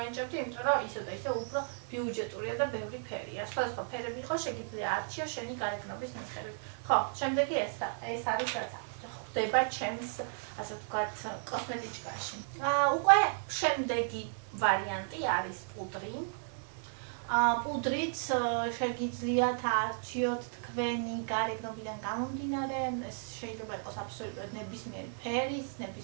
იმიტომ რომ ისე და ისე უფრო ბიუჯეტურია და ბევრი ფერია. სხვადასხვა ფერები იყო, შეგიძლია არჩიო შენი გარეგნობის მიხედვით. ხო, შემდეგი ეს არის რაც აქვს. გვხვდება ჩემს, ასე ვთქვათ, კოსმეტიკაში. უკვე შემდეგი ვარიანტი არის პუდრი. პუდრიც შეგიძლიათ არჩიოთ თქვენი გარეგნობიდან გამომდინარე, ეს შეიძლება იყოს აბსოლუტურად ნებისმიერი ფერის,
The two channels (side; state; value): left; silent; digital silence